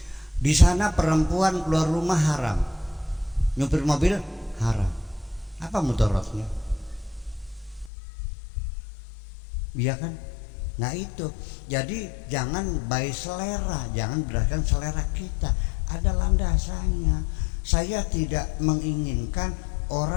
Di sana perempuan keluar rumah haram, nyupir mobil haram. Apa mudaratnya? Iya kan? Nah itu, jadi jangan by selera, jangan berdasarkan selera kita. Ada landasannya. Saya tidak menginginkan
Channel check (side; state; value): right; drops out; at 7.9 s